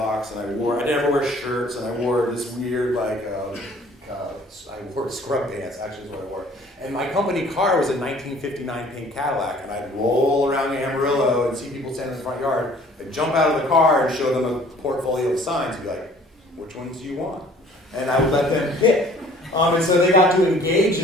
and I never wear shirts, and I wore this weird, like, I wore scrub pants, actually is what I wore. And my company car was a 1959 pink Cadillac, and I'd roll around Amarillo and see people standing in the front yard. I'd jump out of the car and show them a portfolio of signs and be like, which ones do you want? And I would let them pick. And so they got to engage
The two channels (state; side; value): normal; both; correlation 0.54